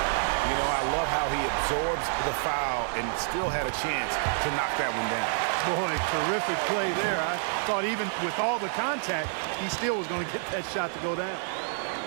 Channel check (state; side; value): silent; left; 59 dB below the other